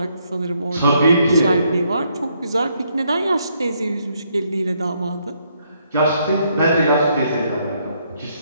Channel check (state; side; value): inverted; both; correlation -0.72